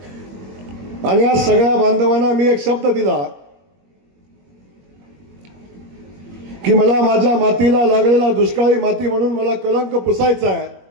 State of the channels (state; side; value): late; left; 21 ms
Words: आणि या सगळ्या बांधवांना मी एक शब्द दिला की मला माझ्या मातीला लागलेला दुष्काळी माती म्हणून मला कलंक पुसायचा आहे.